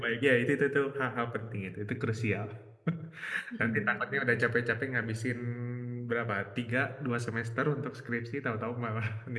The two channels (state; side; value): identical; both; correlation 1.00